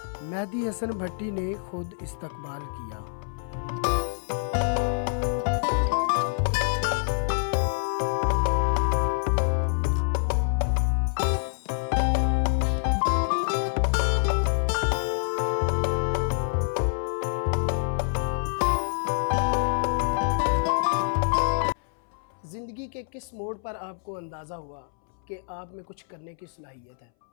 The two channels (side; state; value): right; silent; 60 dB below the other